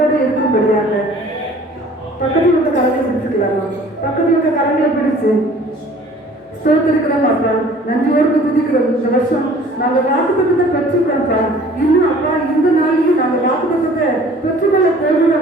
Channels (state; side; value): normal; both; correlation 0.51